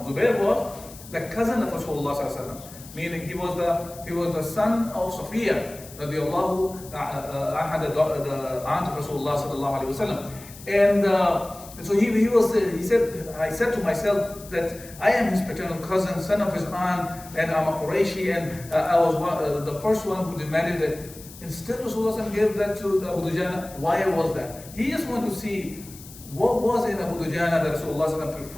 Zubair was the cousin of Rasulullah, meaning he was the son of Safiya, the aunt of Rasulullah sallallahu alaihi wasallam. And And so he said, I said to myself that I am his paternal cousin, son of his aunt, and I'm a Qurayshi, and I was the first one who demanded it. Instead, Rasulullah gave that to Abu Dujana. Why was that? He just wanted to see what was in Abu Dujana that Rasulullah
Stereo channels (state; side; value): noise; left; hiss, 18 dB below the sound